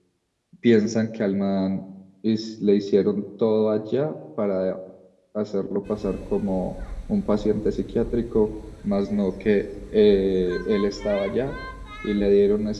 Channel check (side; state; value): both; identical; correlation 1.00